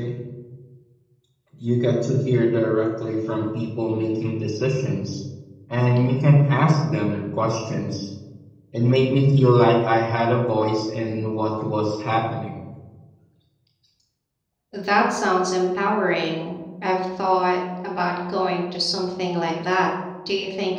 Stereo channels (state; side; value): identical; both; correlation 1.00